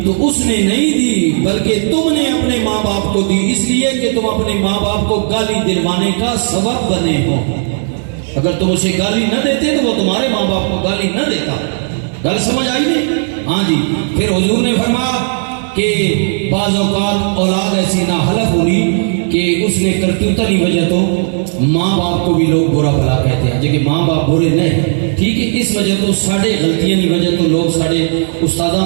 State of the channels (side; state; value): left; silent; 60 dB below the other